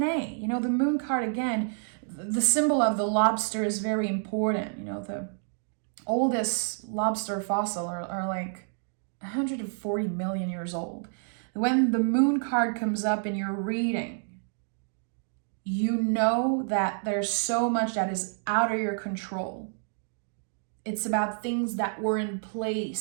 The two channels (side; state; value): left; silent; digital silence